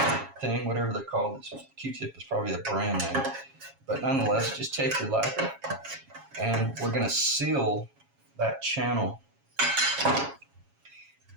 thing, whatever they're called. This Q-tip is probably a brand name. But nonetheless, just take your lacquer, and we're going to seal that channel.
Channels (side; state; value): left; late; 7.3 ms